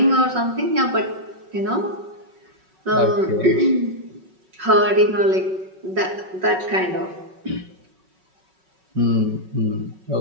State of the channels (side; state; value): left; late; 5.4 ms